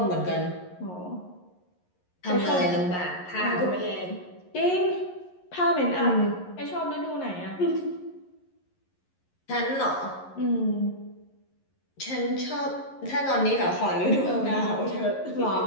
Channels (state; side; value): late; right; 11 ms